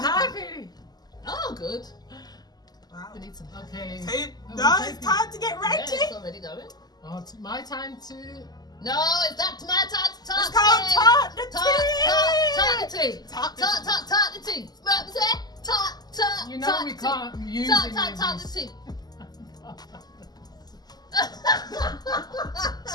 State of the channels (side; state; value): right; late; 0.20 ms